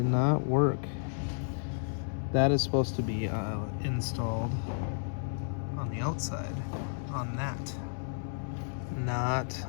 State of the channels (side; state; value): right; silent; digital silence